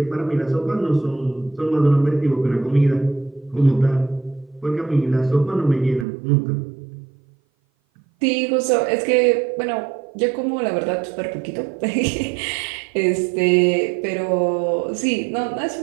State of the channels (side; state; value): left; drops out; at 6.1 s